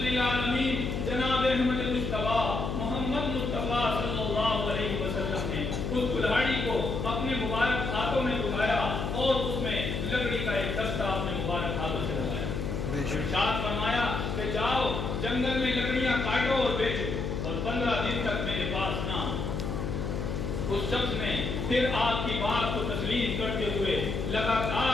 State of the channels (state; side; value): noise; left; hum, 3 dB below the sound